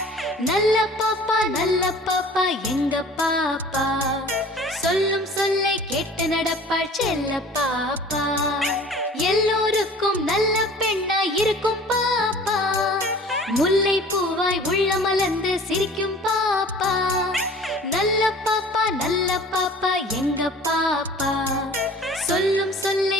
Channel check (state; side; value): normal; both; correlation 0.46